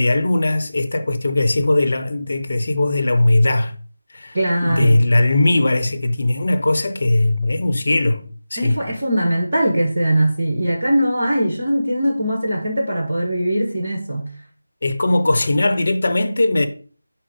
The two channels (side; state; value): both; inverted; correlation -0.96